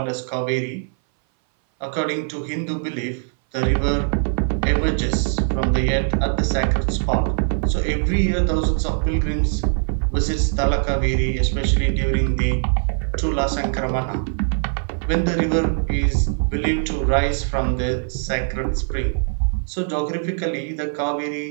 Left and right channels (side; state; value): left; silent; 60 dB below the other